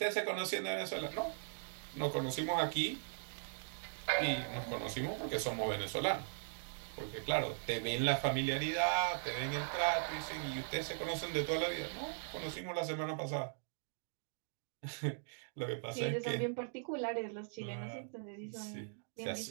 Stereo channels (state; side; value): silent; left; digital silence